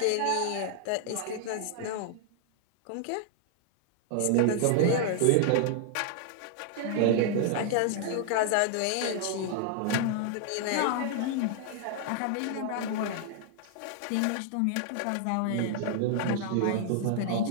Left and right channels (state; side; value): different; both; correlation -0.01